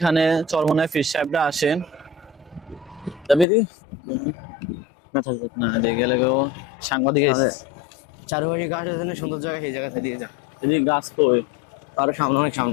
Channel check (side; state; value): right; drops out; at 3.5 s